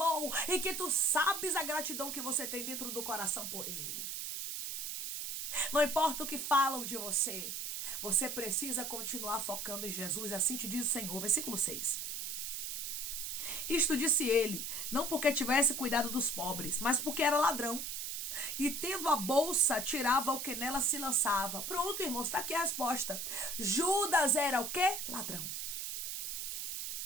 e que tu sabes a gratidão que você tem dentro do coração por ele. Não importa o que falam de você, você precisa continuar focando em Jesus, assim te diz o Senhor. Versículo 6. Isto disse ele, não porque tivesse cuidado dos pobres, mas porque era ladrão. E tendo a bolsa, tirava o que nela se lançava. Pronto, irmãos, está aqui a resposta. Judas era o quê? Ladrão.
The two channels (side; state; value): right; noise; hiss, 4 dB below the sound